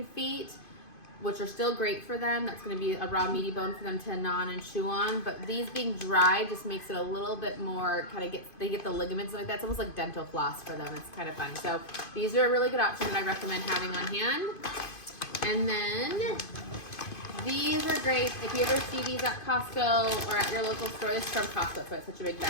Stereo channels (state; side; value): late; right; 2.5 ms